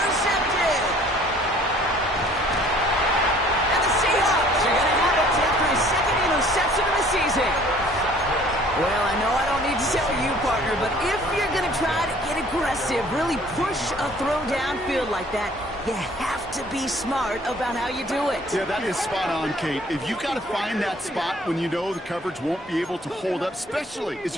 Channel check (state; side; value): normal; both; correlation 0.55